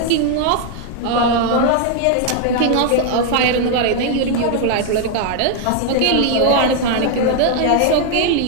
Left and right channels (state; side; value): different; both; correlation 0.00